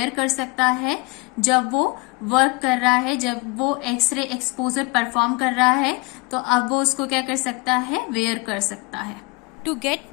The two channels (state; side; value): quieter; right; 27.6 dB